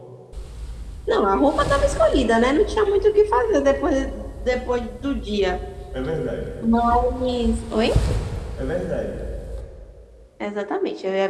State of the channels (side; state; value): both; identical; correlation 1.00